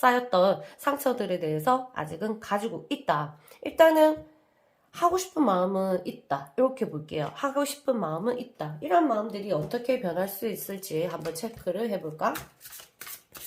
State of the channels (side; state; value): both; identical; correlation 1.00